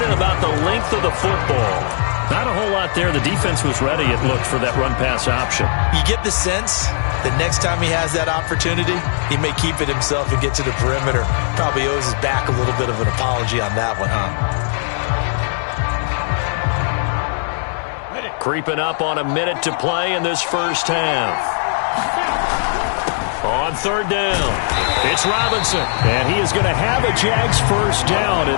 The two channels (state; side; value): silent; right; 67 dB below the other